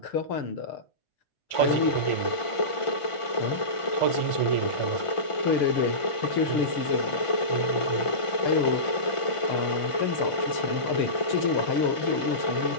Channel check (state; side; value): late; right; 1.5 ms